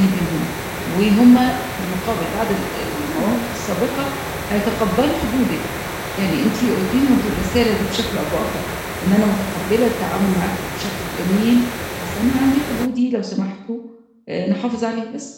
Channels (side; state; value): both; identical; correlation 1.00